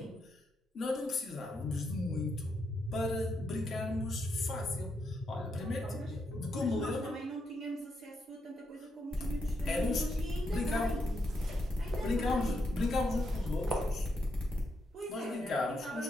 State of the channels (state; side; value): normal; both; correlation 0.81